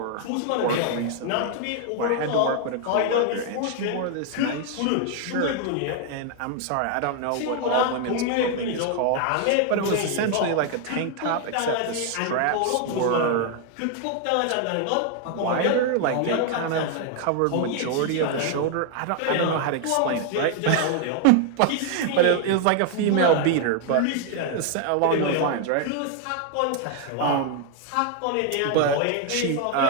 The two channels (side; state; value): both; different; correlation 0.00